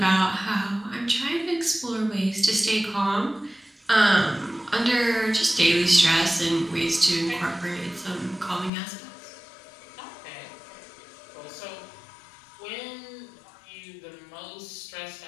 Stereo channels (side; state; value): right; drops out; at 8.7 s